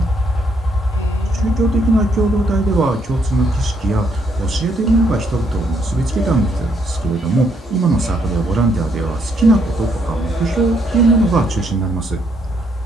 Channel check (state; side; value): normal; both; correlation 0.72